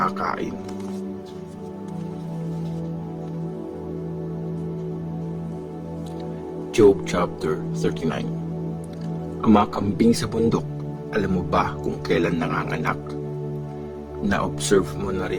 Job chapter 39. Ang mga kambing sa bundok, alam mo ba kung kailan nanganganak? Na-observe mo na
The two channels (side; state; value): both; identical; correlation 1.00